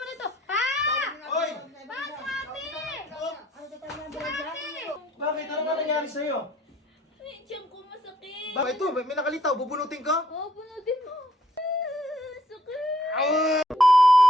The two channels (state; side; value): normal; both; correlation 0.66